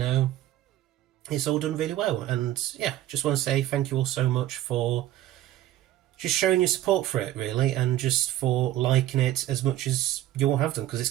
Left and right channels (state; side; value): quieter; left; 13.9 dB